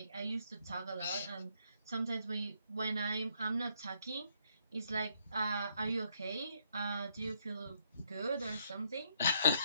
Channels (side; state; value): both; inverted; correlation -0.71